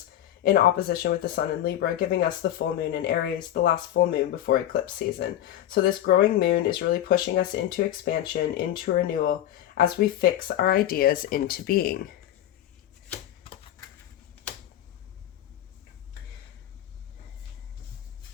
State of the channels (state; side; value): quieter; right; 12.2 dB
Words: in opposition with the sun in Libra, giving us the full moon in Aries, the last full moon before eclipse season. So this growing moon is really pushing us into expansion, into renewal, as we fix our ideas into being.